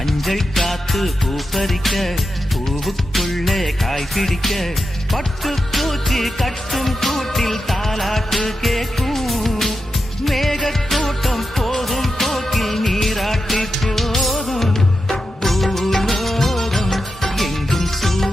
காத்து பூப்பறிக்க பூவுக்குள்ளே காய் பிடிக்க. பட்டு பூச்சி கட்டும் கூட்டில் தாலாட்டு கேட்கும். மேகக்கூட்டம் போகும் போக்கில் நீராட்டி போதும். பூலோகம் எங்கும்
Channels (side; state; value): both; normal; correlation 0.89